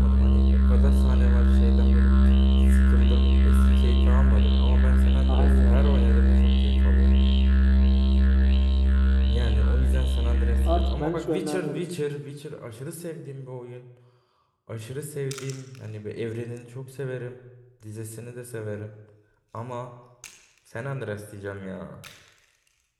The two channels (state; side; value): identical; both; correlation 1.00